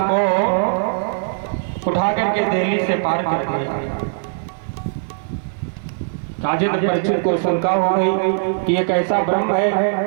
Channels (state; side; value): silent; left; digital silence